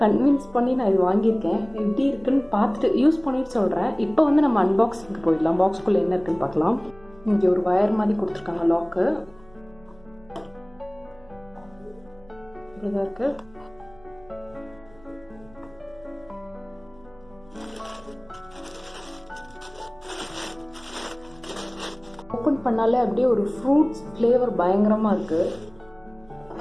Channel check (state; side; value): noise; right; hum, 25 dB below the sound